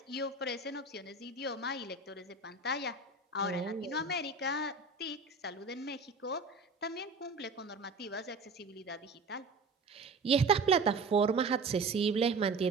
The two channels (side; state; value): left; quieter; 3.8 dB